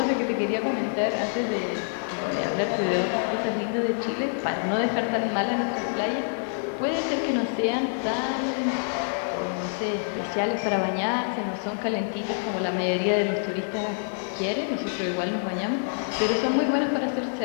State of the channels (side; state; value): right; silent; digital silence